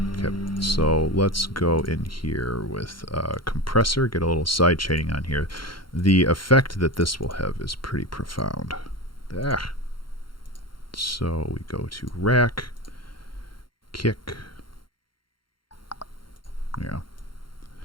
Okay, so let's go in here with compressor, get a little side chaining on here. The effect that this will have is pretty profound. So we go to rack, kick. Yeah.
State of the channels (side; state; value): right; late; 0.73 ms